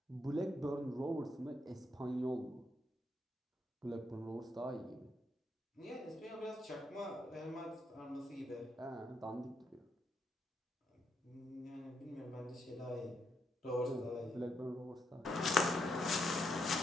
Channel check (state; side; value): normal; both; correlation 0.78